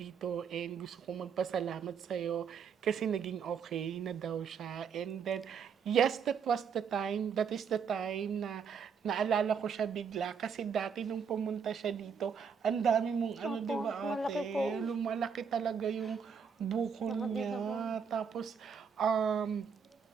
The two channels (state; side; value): quieter; left; 6.6 dB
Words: and gusto kong magpasalamat sa'yo kasi naging okay na daw siya. And then, yes, that is the time na naalala ko siya bigla kasi dati nung pumunta siya dito, ang dami mong Opo, di ba malaki ate? po. Lumalaki talaga yung buko Nakadito po. niya. Tapos,